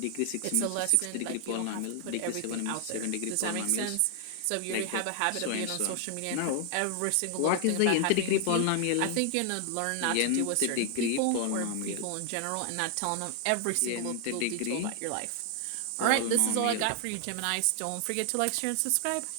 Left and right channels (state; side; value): different; both; correlation 0.00